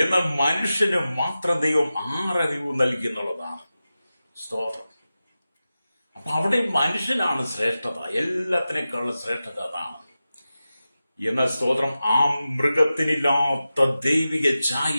മനുഷ്യന് മാത്രം ദൈവം 6 അറിവ് നൽകി എന്നുള്ളതാണ്. സ്തോത്രം. അപ്പൊ അവിടെ മനുഷ്യനാണ് ശ്രേഷ്ഠത, എല്ലാത്തിനേക്കാളും ശ്രേഷ്ഠത അതാണ്. എന്നാൽ സ്തോത്രം, ആ മൃഗത്തിനില്ലാത്ത ദൈവിക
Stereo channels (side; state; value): both; inverted; correlation -0.94